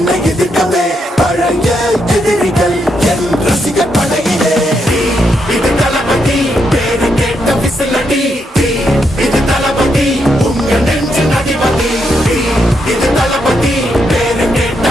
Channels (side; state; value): both; normal; correlation 0.80